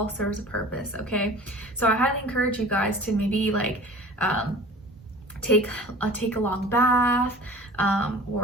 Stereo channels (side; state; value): both; normal; correlation 0.42